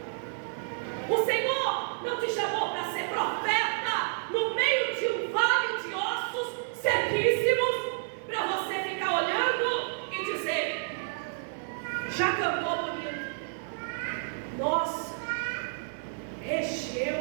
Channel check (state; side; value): silent; left; 58 dB below the other